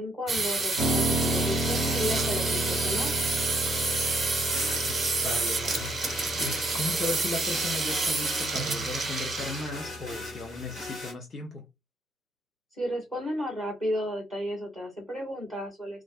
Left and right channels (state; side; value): normal; both; correlation 0.70